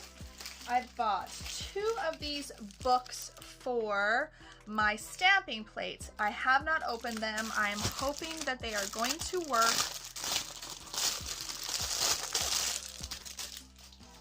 I bought 2 of these books for my stamping plates. I have not opened them. I am hoping that they are going to work.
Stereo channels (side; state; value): both; identical; correlation 1.00